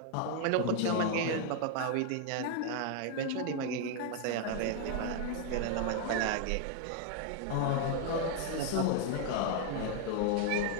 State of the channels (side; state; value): both; different; correlation 0.00